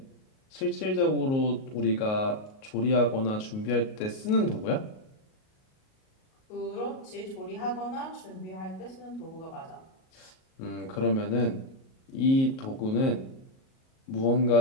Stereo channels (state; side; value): late; right; 38 ms